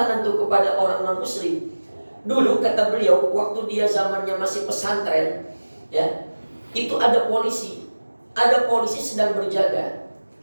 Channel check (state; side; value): inverted; both; correlation -1.00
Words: tuh kepada orang non muslim. Dulu kata beliau, waktu dia zamannya masih pesantren, ya, itu ada polisi sedang berjaga.